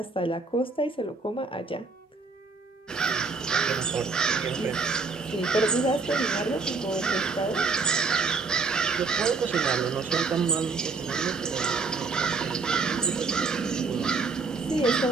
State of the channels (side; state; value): left; quieter; 4.3 dB